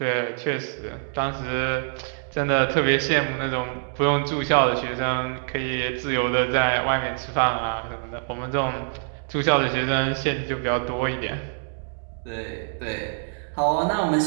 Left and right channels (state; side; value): silent; left; digital silence